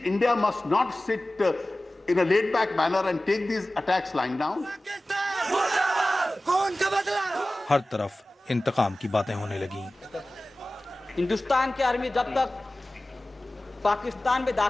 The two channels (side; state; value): both; normal; correlation 0.97